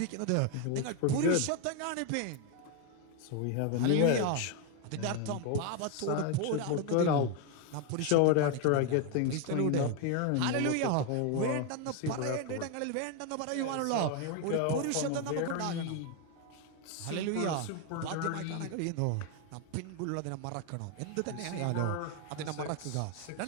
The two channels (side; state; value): both; different; correlation 0.01